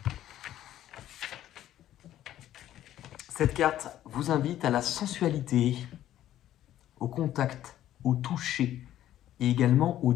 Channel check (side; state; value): right; quieter; 12.5 dB